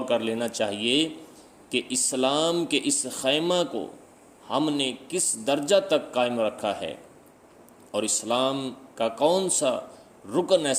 کر لینا چاہیے کہ اسلام کے اس خیمہ کو ہم نے کس درجہ تک قائم رکھا ہے، اور اسلام کا کون سا رکن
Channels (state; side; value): identical; both; correlation 1.00